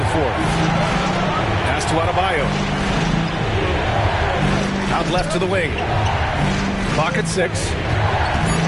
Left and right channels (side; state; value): both; identical; correlation 1.00